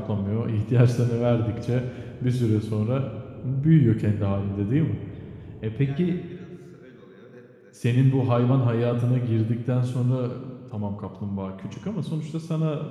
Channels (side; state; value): both; identical; correlation 1.00